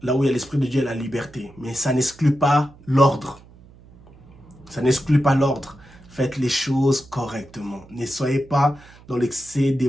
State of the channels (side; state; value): right; noise; hum, 24 dB below the sound